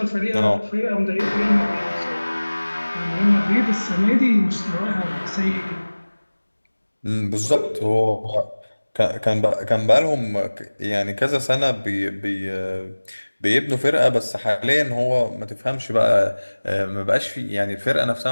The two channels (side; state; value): both; inverted; correlation -1.00